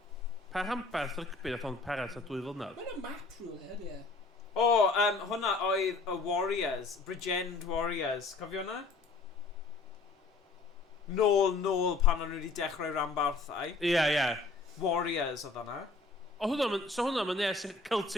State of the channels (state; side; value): quieter; right; 3.8 dB